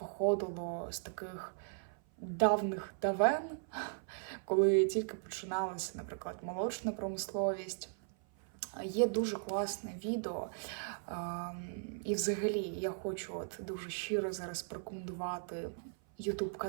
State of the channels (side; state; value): left; silent; 53 dB below the other